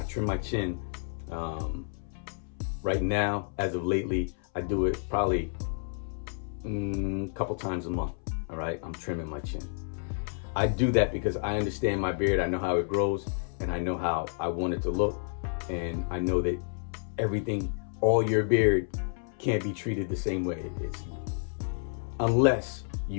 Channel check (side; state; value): right; silent; 58 dB below the other